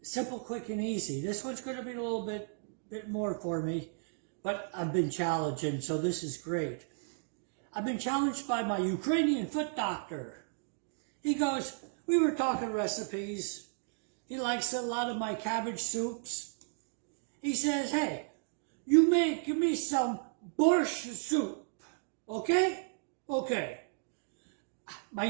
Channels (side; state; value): left; silent; digital silence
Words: simple, quick, and easy. This one's going to be a little bit more for me, but I've been challenged, and so this is great. I've been challenged by my Ukrainian foot doctor. He goes, we were talking recipes. He likes a lot of my cabbage soups. He says, hey, you give me some borscht soup, okay? Okay. My